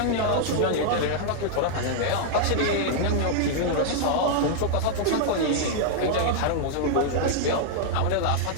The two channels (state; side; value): different; both; correlation -0.01